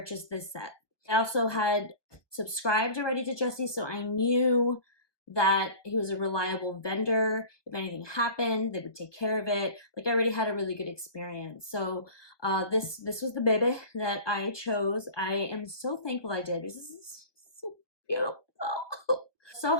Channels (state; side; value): late; right; 1.2 ms